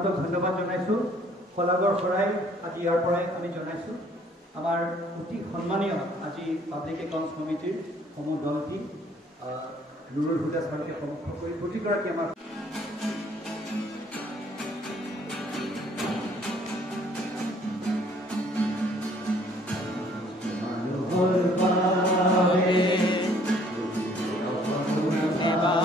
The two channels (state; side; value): normal; both; correlation 0.59